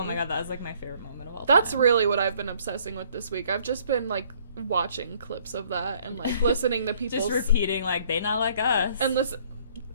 my god, that was like my favorite moment of all time. That's really what I've been obsessing with this week. I've just been like watching clips of that and like listening to people's... just repeating like, they not like us. And listen,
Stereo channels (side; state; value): both; inverted; correlation -0.61